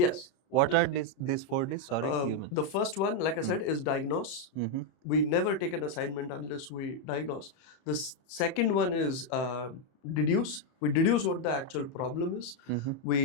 What are these 4Ds? Sorry. The first one, like I said, is diagnose. We never take an assignment unless we diagnose. The second one is deduce. We deduce what the actual problem is.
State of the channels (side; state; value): right; late; 31 ms